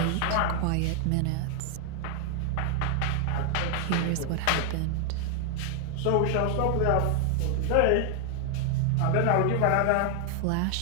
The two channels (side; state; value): both; different; correlation 0.00